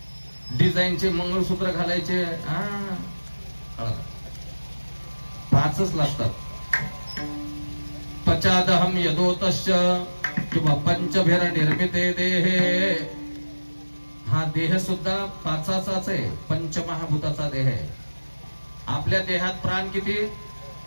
डिझाईनचे मंगळसूत्र घालायचे, 5च लागतात. पश्चादहम यदोतस्य किंवा पंचभिर निर्मिते देहे. हा देह सुद्धा पाचाचाच आहे, पंचमहाभूताचा देह आहे. आपल्या देहात प्राण किती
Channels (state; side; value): inverted; both; correlation -1.00